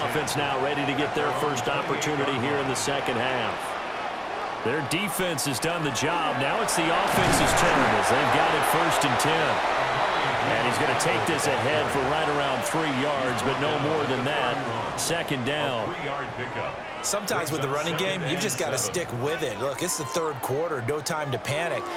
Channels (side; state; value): both; identical; correlation 1.00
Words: now ready to get their first opportunity here in the second half. Their defense has done the job. Now it's the offense's turn as they've got it 1st and 10. And he's going to take this ahead for right around 3 yards, but no more than that. 2nd down. Sometimes with the running game, you've just got to stick with it. Look, it's the 3rd quarter, no time to panic.